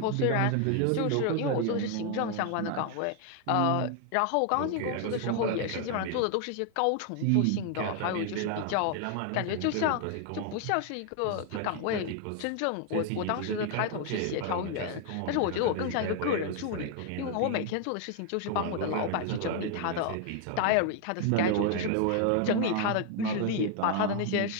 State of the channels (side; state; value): both; different; correlation 0.00